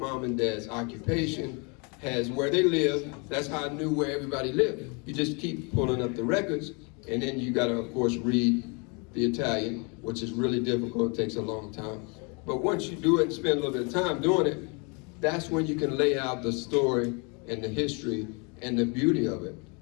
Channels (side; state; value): right; quieter; 32.9 dB